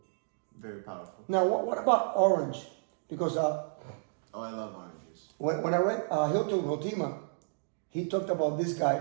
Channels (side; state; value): left; silent; digital silence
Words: Very powerful. Now, what about orange? Because I love oranges. When I read Hilton Hotima, he talked about this